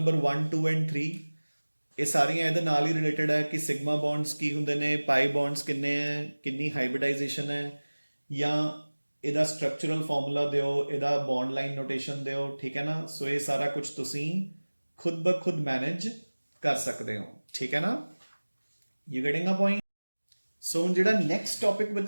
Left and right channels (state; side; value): inverted; both; correlation -1.00